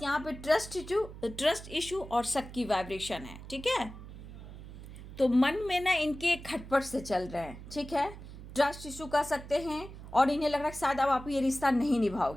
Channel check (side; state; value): right; noise; hum, 14 dB below the sound